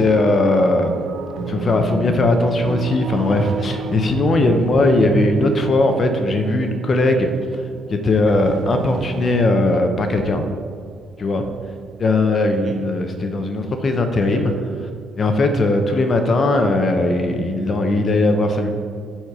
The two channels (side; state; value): both; normal; correlation 0.75